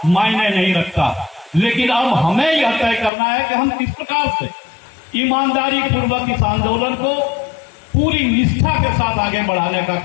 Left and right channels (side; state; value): right; drops out; at 3.1 s